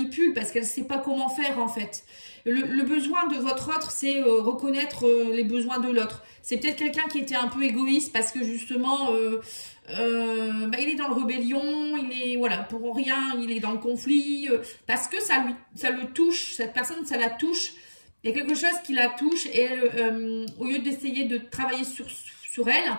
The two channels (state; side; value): inverted; both; correlation -1.00